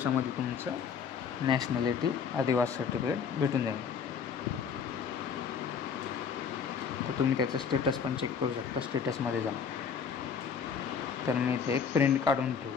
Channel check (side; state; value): right; quieter; 6.6 dB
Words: तुमचं नॅशनॅलिटी आदिवासी सर्टिफिकेट भेटून जाईल. तर तुम्ही त्याचं स्टेटस पण चेक करू शकता स्टेटसमध्ये जाऊन. तर मी इथे एक प्रिंट काढून